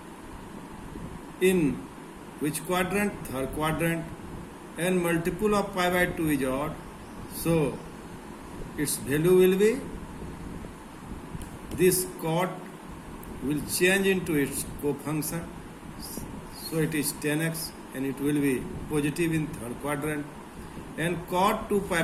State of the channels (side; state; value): both; identical; correlation 1.00